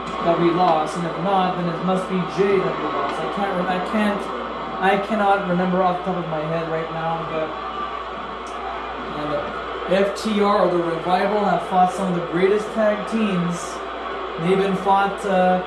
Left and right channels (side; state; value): both; identical; correlation 1.00